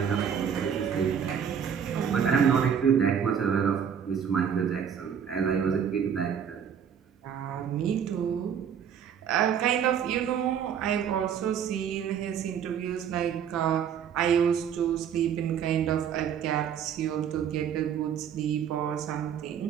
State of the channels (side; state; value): left; quieter; 8.1 dB